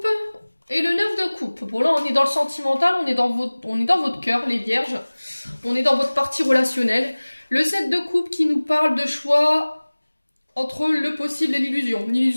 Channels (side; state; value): both; inverted; correlation -1.00